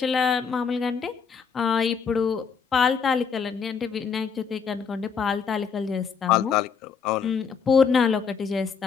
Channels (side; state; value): right; quieter; 6.2 dB